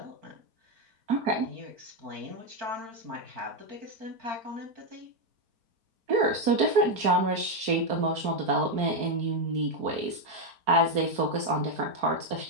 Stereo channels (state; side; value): late; left; 4.6 ms